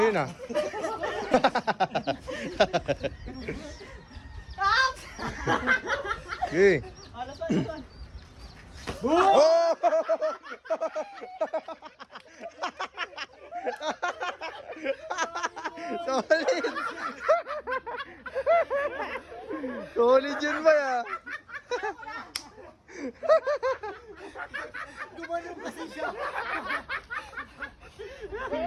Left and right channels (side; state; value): both; identical; correlation 1.00